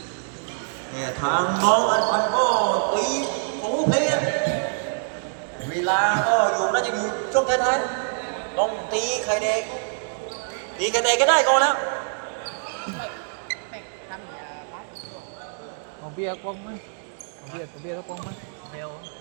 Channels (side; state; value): left; silent; digital silence